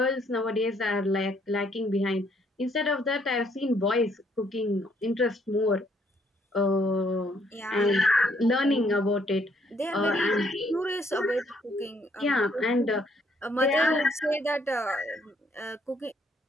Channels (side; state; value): both; normal; correlation 0.68